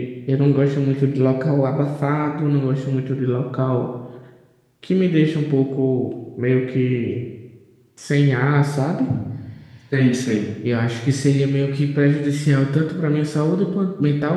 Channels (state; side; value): identical; both; correlation 1.00